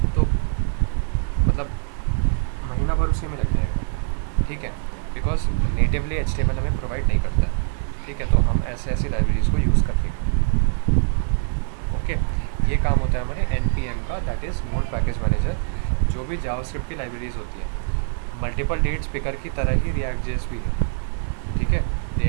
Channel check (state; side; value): silent; left; 63 dB below the other